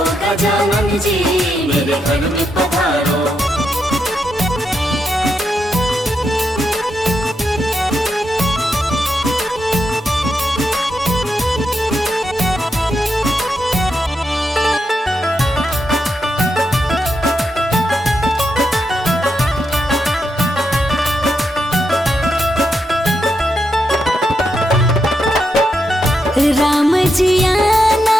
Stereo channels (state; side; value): normal; both; correlation 0.83